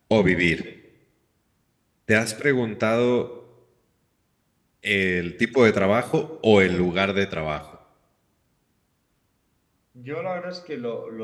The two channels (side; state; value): both; identical; correlation 1.00